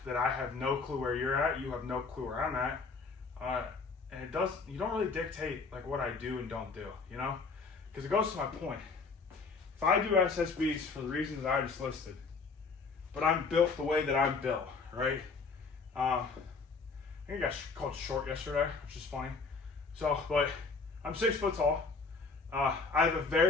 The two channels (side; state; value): right; quieter; 4.5 dB